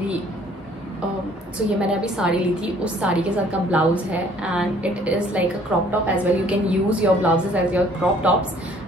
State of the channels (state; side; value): normal; both; correlation 0.58